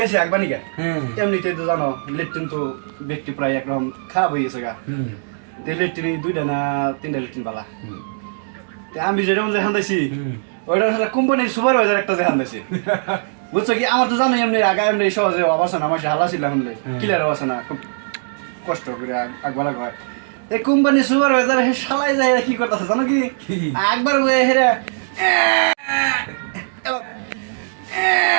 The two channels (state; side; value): silent; left; digital silence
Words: একবার নিকে। এমনিতে তো জানো লেট্রিন তো ব্যক্তি প্রায় একদম খারাপ হয়ে গেছে গা। লেট্রিন 2টা না 3টা লেট্রিন বালা। আমি যেটা হান্দাইছি ওইটা আসলে কোম্পানির সুপারভাইজার একটা যে হান্দাইছে বুঝছো কি? আমার তো জানো এমনি আগে এমনি সহজে অবস্থা না আমার হালা ছিল শুনলে ক্লিয়ার অবস্থা না খুব কষ্ট করে একবার হয় এই কোম্পানির সুপারভাইজার শালাই যায় কি করতেছে জানো কি? একবার হেরা